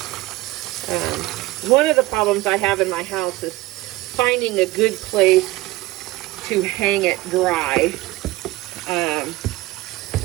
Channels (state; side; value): quieter; left; 18.8 dB